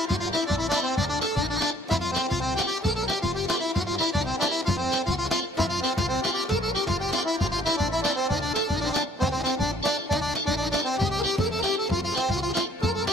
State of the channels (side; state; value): both; normal; correlation 0.61